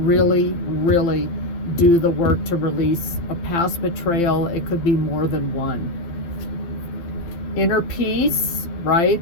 really, really do the work to release a past betrayal. It could be more than one. Inner peace,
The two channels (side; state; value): right; late; 12 ms